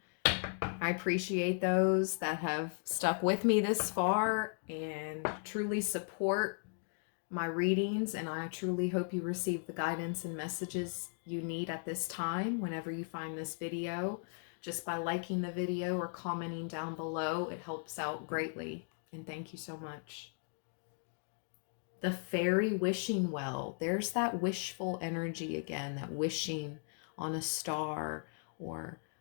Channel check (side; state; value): right; silent; 53 dB below the other